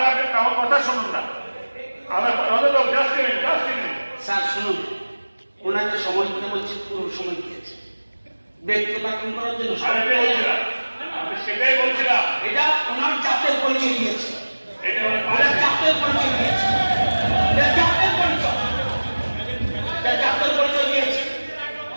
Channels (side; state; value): both; inverted; correlation -1.00